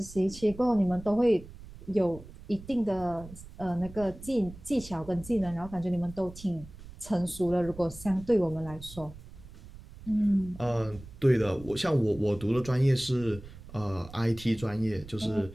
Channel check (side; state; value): right; noise; rumble, 17 dB below the sound